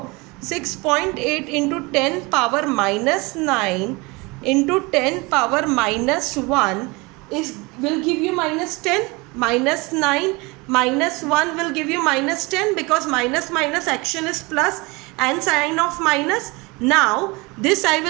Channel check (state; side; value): quieter; left; 25.6 dB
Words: 6.8 into 10 power minus 9 into 10 power minus 1 will give you minus 10. Minus 9 minus 1 will give you minus 10, because minus action is plus and sign of minus. Now this I